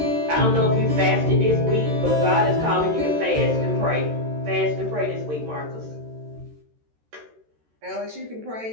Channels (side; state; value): left; late; 13 ms